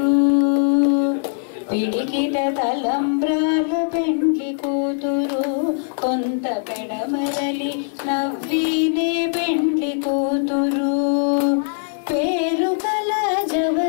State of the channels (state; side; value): silent; right; digital silence